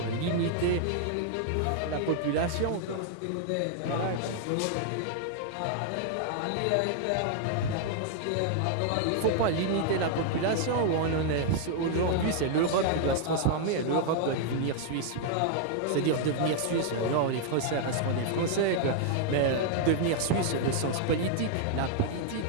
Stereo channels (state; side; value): different; both; correlation 0.00